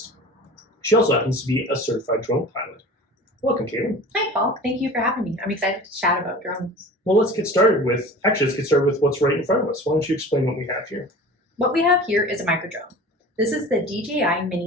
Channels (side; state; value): both; normal; correlation 0.39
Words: She also happens to be a certified drone pilot. Welcome, Caitlin. Hi, Paul. Thank you for having me. I'm excited to chat about drones. Well, let's get started with what's right in front of us. Why don't you explain what we have here? What we have here is a micro drone. This is the DJI